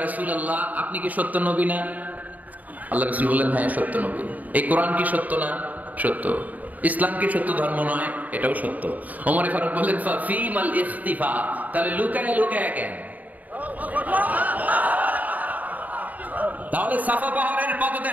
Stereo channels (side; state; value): left; late; 0.077 ms